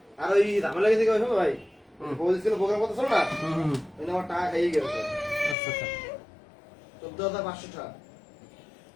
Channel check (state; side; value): drops out; right; at 5.6 s